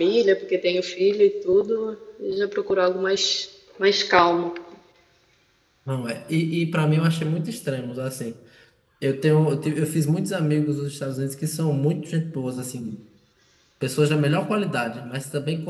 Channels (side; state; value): both; identical; correlation 1.00